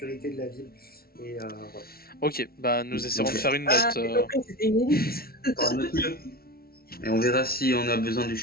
de la ville. Et voilà. Ok, bah nous essaierons Ok. de faire une Ah, note. j'ai compris, c'était une élite. On fera notre mieux. Et on verra si on a besoin du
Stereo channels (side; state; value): right; late; 0.44 ms